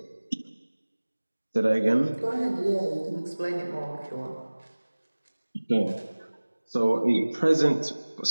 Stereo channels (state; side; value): inverted; both; correlation -1.00